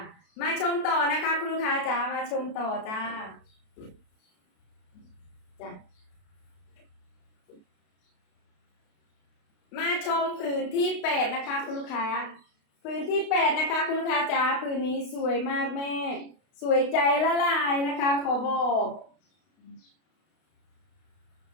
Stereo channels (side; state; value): right; late; 32 ms